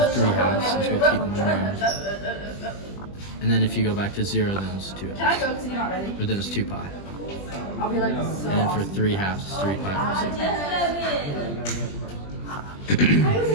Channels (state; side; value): late; right; 20 ms